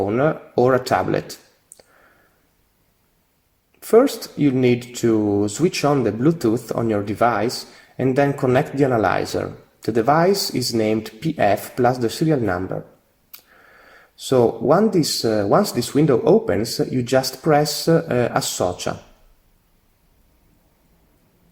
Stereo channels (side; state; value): both; identical; correlation 1.00